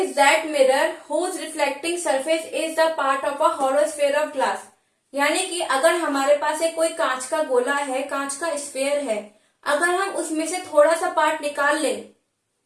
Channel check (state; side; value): identical; both; correlation 1.00